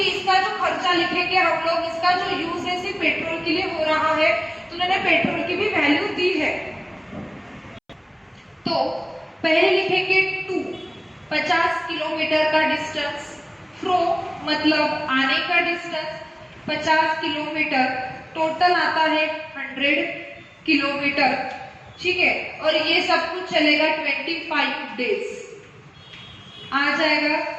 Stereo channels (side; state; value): both; identical; correlation 1.00